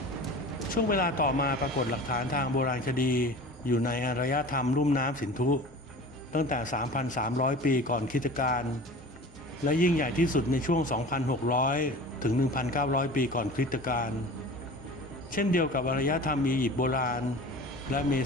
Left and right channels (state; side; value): normal; both; correlation 0.38